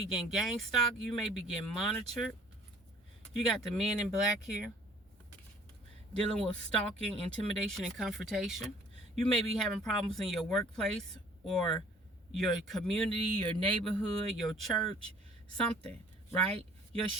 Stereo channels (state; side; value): normal; both; correlation 0.54